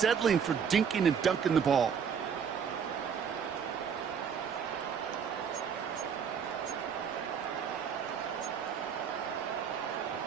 for dinking and dunking the ball.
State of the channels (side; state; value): left; quieter; 7.1 dB